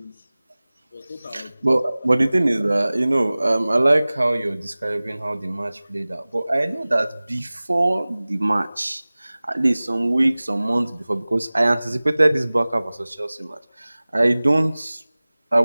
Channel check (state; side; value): inverted; both; correlation -0.99